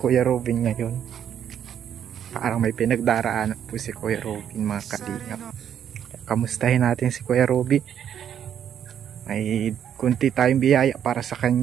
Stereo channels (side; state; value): left; quieter; 9.2 dB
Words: Robin ngayon. Parang may pinagdaraanan po si Kuya Robin, mga kalingap. Kamustahin natin si Kuya Robin. May kunti tayong biyaya para sa